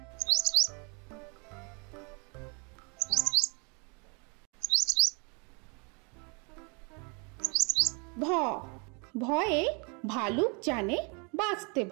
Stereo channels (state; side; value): quieter; left; 33.5 dB